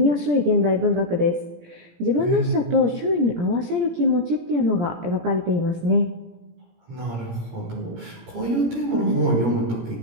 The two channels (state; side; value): late; left; 17 ms